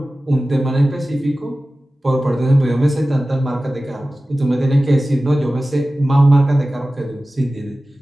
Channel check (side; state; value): both; normal; correlation 0.96